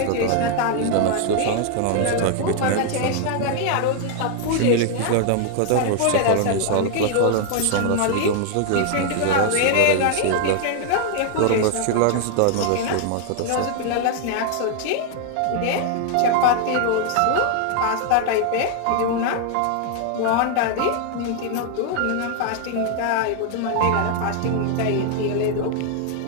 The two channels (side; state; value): both; different; correlation 0.00